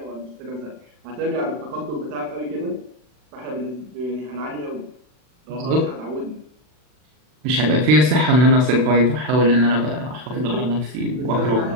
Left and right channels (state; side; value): late; left; 40 ms